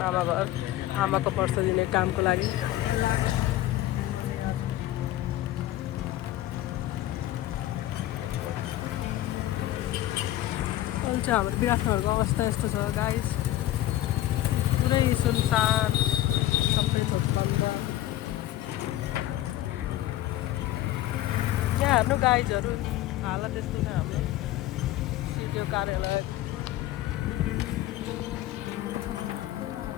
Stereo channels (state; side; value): quieter; right; 14.4 dB